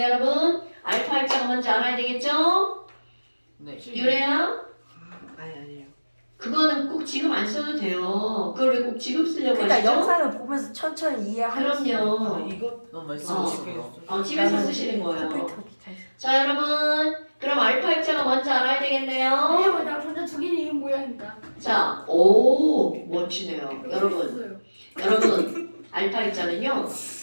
여러분 알파 입자가 뭔지 알아야 되겠죠? 네. 유래야? 아니에요. 그거는 꼭 지금 안 써도 돼요. 그걸 왜 꼭 지금 쓰려고 그러니까 하시죠? 영상을 보면서 천천히 이해하면서. 그럼요. 이거 너무 말씀하시고. 집에서 쓰시는 거예요. 컴퓨터 기타에서. 자 여러분 그럼 알파 입자가 뭔지 알아야 되겠네요. 왜냐면 전자 두 개는 이 모양이다. 자, 오 멋지네요. 여러분 알파 입자는요.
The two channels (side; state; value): both; inverted; correlation -1.00